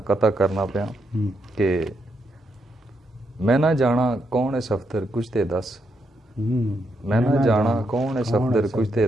قطع کرنا پیا کہ میں نہ جانا کون ہے صفدر کچھ تے دس، میں نہ جانا کون ہے صفدر کچھ تے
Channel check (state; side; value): normal; both; correlation 0.80